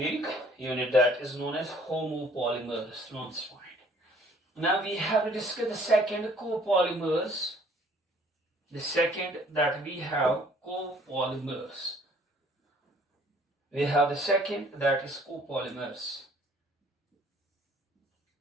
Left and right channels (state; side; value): normal; both; correlation 0.57